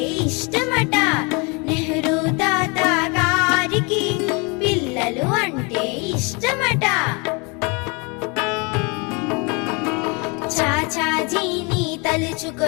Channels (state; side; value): quieter; right; 30.8 dB